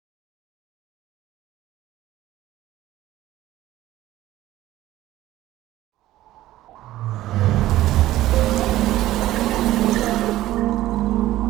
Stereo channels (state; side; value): quieter; left; 15.1 dB